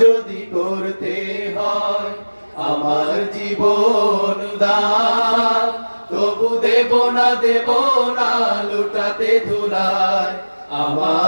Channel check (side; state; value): both; inverted; correlation -1.00